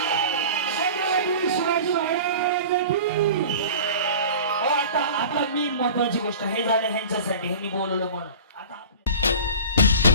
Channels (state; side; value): inverted; both; correlation -0.36